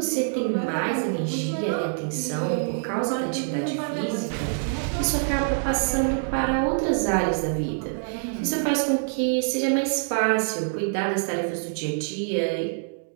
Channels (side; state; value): left; silent; digital silence